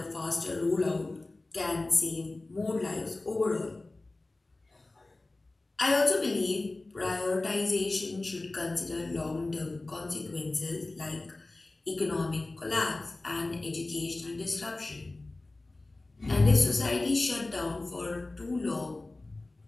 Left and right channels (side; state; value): right; quieter; 3.0 dB